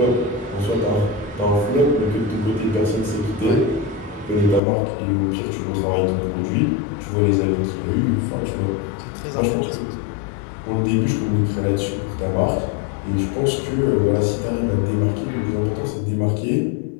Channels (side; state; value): right; drops out; at 4.6 s